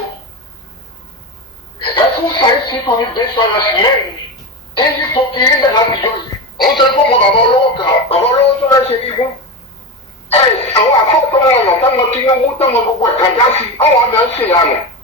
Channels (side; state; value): both; normal; correlation 0.20